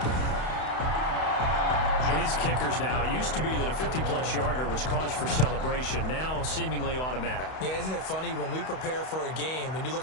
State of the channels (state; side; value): late; right; 31 ms